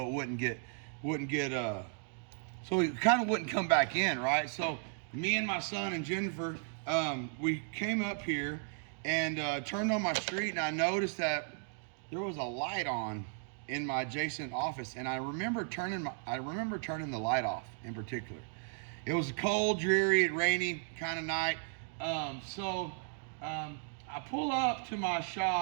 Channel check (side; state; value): left; silent; 54 dB below the other